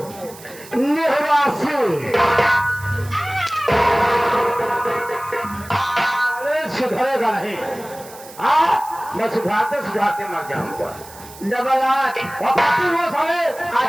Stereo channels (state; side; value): noise; right; hiss, 18 dB below the sound